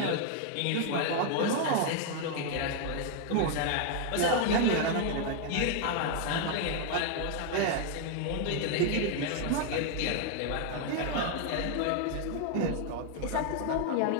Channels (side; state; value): both; different; correlation 0.00